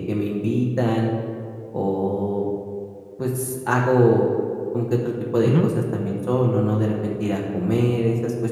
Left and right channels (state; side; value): identical; both; correlation 1.00